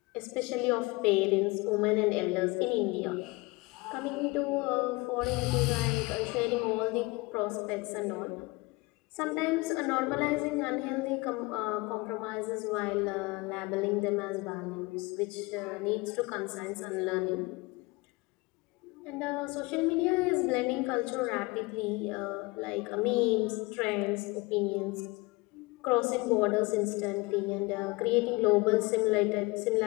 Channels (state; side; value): quieter; right; 24.4 dB